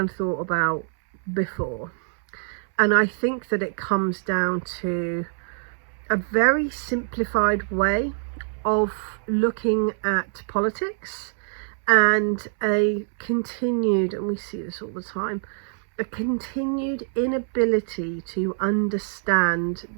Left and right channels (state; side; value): silent; left; 62 dB below the other